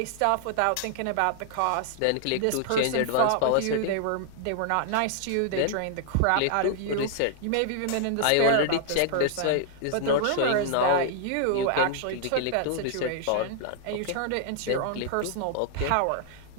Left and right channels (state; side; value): different; both; correlation -0.01